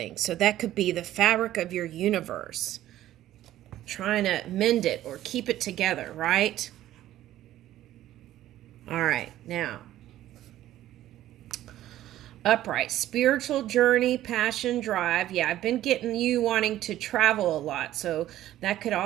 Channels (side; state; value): left; quieter; 13.6 dB